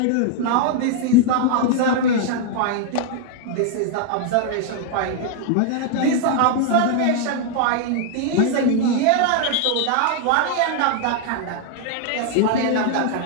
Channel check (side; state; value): both; different; correlation 0.00